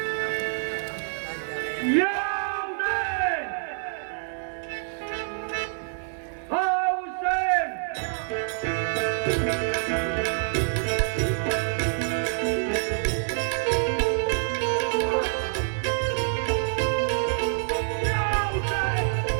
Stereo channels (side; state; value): left; silent; digital silence